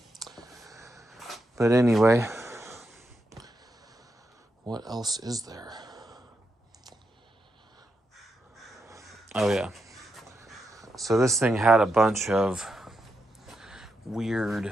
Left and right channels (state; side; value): normal; both; correlation 0.84